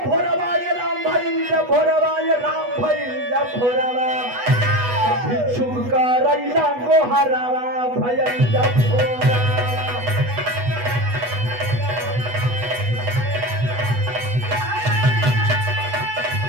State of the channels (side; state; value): left; late; 8.2 ms